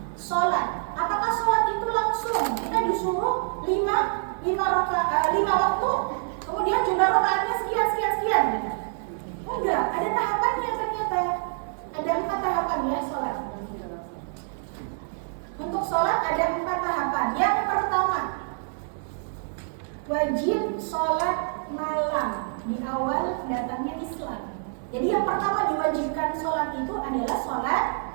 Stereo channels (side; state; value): left; silent; digital silence